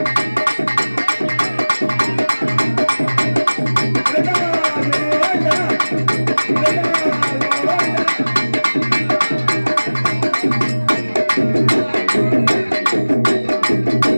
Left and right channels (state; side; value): inverted; both; correlation -1.00